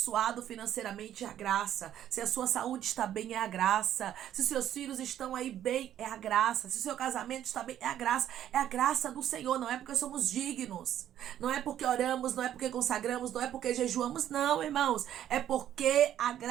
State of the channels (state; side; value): quieter; left; 11.2 dB